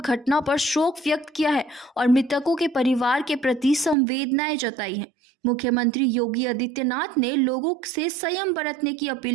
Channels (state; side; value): drops out; left; at 4.0 s